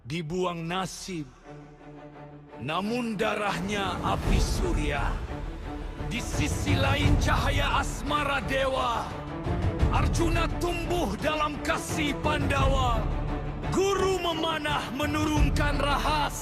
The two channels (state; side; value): identical; both; correlation 1.00